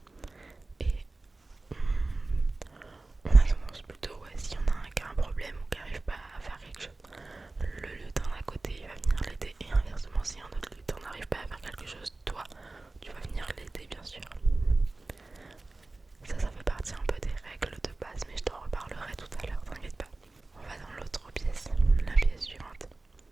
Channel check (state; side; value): quieter; left; 3.2 dB